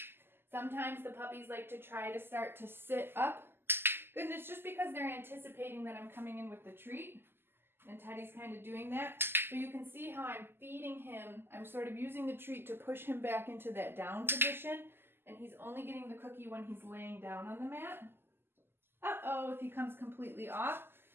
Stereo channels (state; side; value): late; left; 0.11 ms